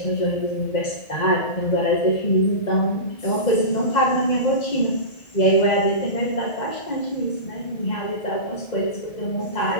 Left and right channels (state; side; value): late; right; 1.8 ms